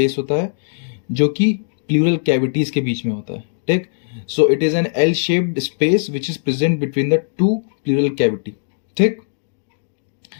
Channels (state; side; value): silent; right; digital silence